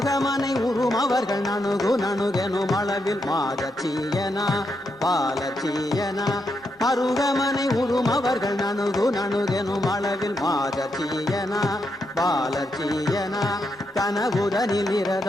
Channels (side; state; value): both; normal; correlation 0.82